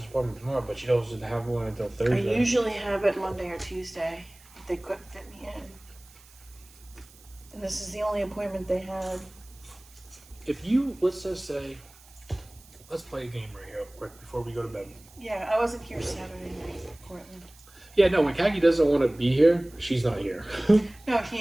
appointment tomorrow, but she doesn't have one until I Thursday. usually have it Monday or Tuesday, but they couldn't fit me in. And this is the only appointment they had. If you, let's just say, let's play a game right here quick before we go to bed. Yeah, I wasn't here Saturday night, Portland. Yeah, no, when Kaki doesn't want to be here, she's not here. No,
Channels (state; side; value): noise; right; hiss, 25 dB below the sound